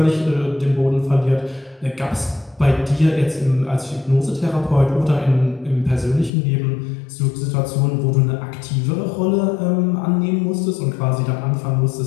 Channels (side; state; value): right; drops out; at 6.3 s